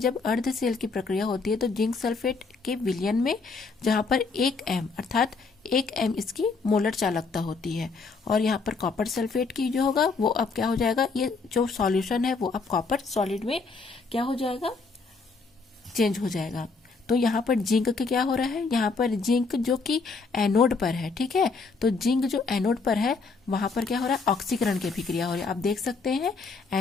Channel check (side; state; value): right; quieter; 4.4 dB